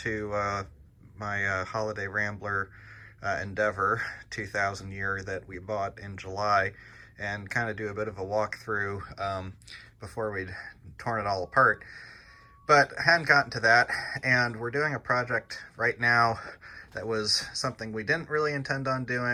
to my holiday Rambler Endeavor 2000 year that we bought in July and kind of do a bit of a walkthrough before we'd torn it all apart. But I hadn't gotten to that, and we're doing a project right now that was something we didn't really intend on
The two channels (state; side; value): identical; both; correlation 1.00